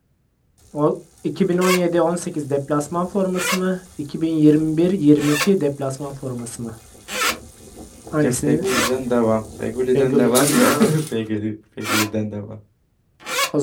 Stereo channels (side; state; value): both; identical; correlation 1.00